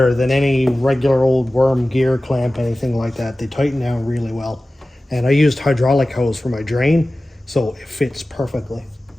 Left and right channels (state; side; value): normal; both; correlation 0.96